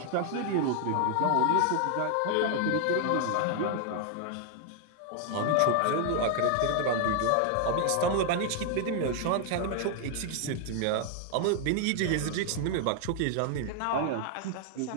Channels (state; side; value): different; both; correlation 0.00